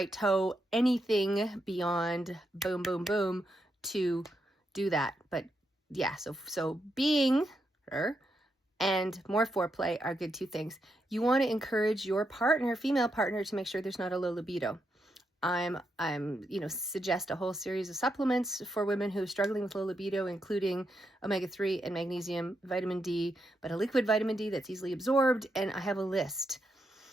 toe, anything beyond boom, boom, boom to do that. But yeah, so being her and more foreplay are good 2 things. You want to encourage your partner, female partner, to make sure there's not a low libido. I'm suggest a whole series of supplements for women who are struggling with low libido, including omega-3 and magnesium, vitamin D, but a liquid vitamin D that's easily absorbed. And I have a list,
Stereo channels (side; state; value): both; normal; correlation 0.82